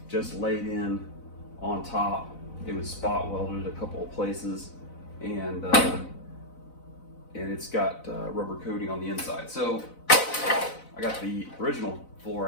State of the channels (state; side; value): late; right; 4.0 ms